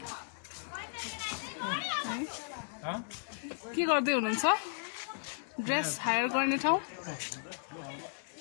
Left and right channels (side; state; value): right; silent; digital silence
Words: के गर्दै हुनुहुन्छ ड्रेस हायर गर्ने ठाउँ